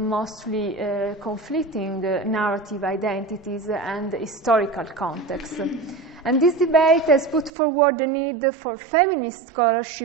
mostly conflicting narrative identities and historical contexts. And this debate has put forward the need for feminist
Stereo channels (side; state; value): left; drops out; at 7.5 s